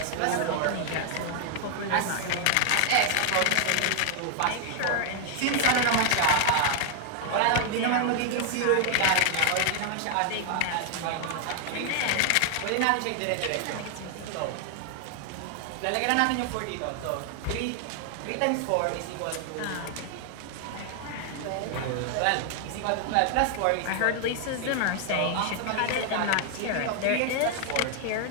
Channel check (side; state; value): both; different; correlation 0.00